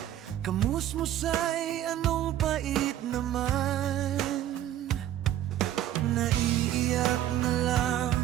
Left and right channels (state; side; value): quieter; left; 12.1 dB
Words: Kamusmusay, anong pait naman. Naiiyak na lang